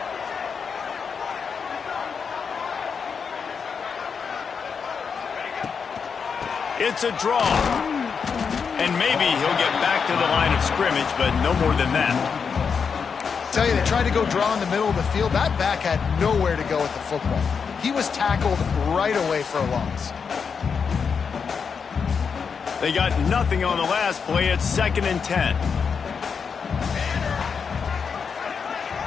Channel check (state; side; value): quieter; right; 6.0 dB